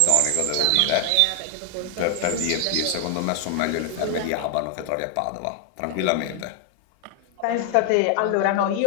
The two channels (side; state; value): both; different; correlation 0.00